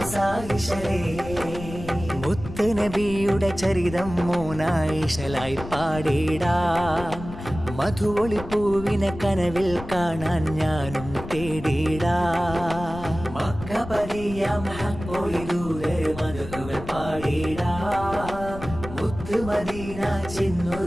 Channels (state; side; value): noise; left; rumble, 11 dB below the sound